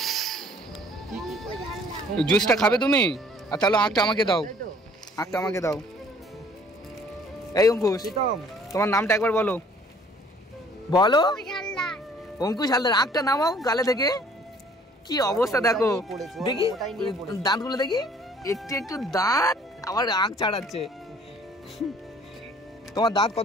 জুসটা খাবে তুমি? আর তাহলে আঁকটা আমাকে দাও, আঁকটা আমাকে দাও। এই অঙ্কুশ তোমার নামটা একবার বলো, বলো। অঙ্কুশ হালদার। আঁকটা নামাও গালে থেকে। কি অবস্থা দেখো, দেখি দাঁতগুলো দেখি, একটু দাঁত আবার আঁক ছাড়াচ্ছে। তোমার দাঁত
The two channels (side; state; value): both; normal; correlation 0.56